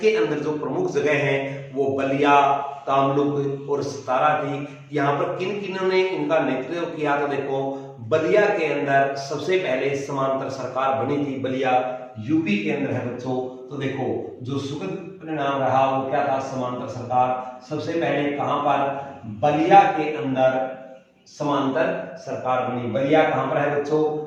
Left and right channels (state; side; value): identical; both; correlation 1.00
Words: अंदर जो प्रमुख जगह हैं वो बलिया, तामलुक और सतारा थी। यहाँ पर किन किन्हों ने इनका नेतृत्व किया? तो देखो, बलिया के अंदर सबसे पहले समांतर सरकार बनी थी, बलिया यूपी के अंदर है बच्चों। तो देखो, जो सुखद परिणाम रहा वो क्या था? समांतर सरकार सबसे पहले कहां पर? बलिया के अंदर समांतर सरकार बनी। बलिया कहां पर है बच्चों?